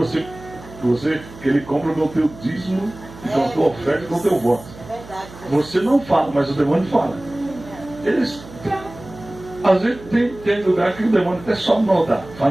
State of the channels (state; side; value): noise; right; hum, 18 dB below the sound